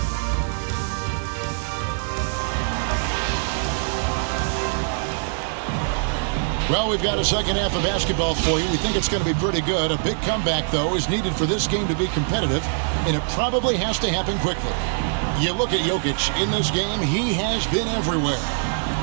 Well, we've got a second half of basketball for you. We think it's going to be pretty good. A big comeback, though, is needed for this game to be competitive, and it probably has to happen quickly. You look at Jokic in this game, he has been everywhere.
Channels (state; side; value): silent; left; 56 dB below the other